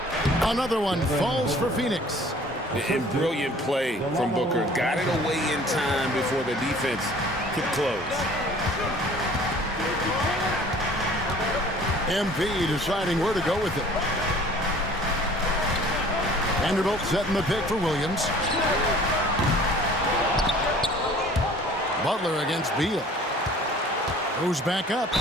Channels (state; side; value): normal; both; correlation 0.50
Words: Another one falls for Phoenix. And brilliant play from Booker. Got it away in time before the defense could close. MP deciding where to go with it. Vanderbilt setting the pick for Williams. Butler against Beal. Goes back up.